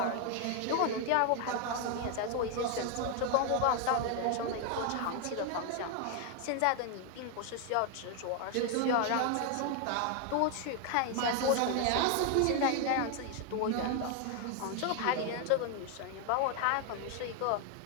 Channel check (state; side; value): different; both; correlation 0.01